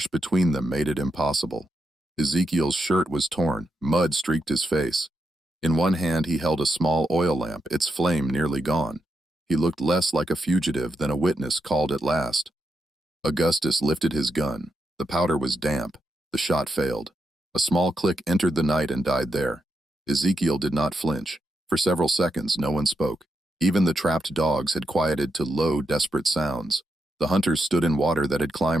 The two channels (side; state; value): both; normal; correlation 0.84